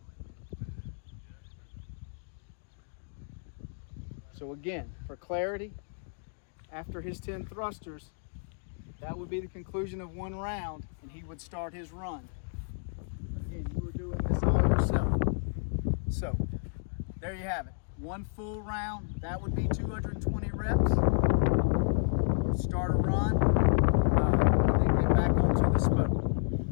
So again, for clarity, after his 10 thrusters, that would be the conclusion of one round, and he would start his run. Again, you were doing this all yourself. So, there you have it. One full round, that would be 220 reps. Start a run. Back onto the spoke.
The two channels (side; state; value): right; silent; digital silence